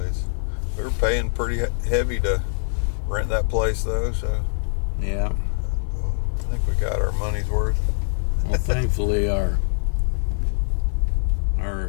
We were paying pretty heavy to rent that place, though, so Yeah. I think we got our money's worth. Well, thankfully, our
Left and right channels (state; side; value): silent; right; 61 dB below the other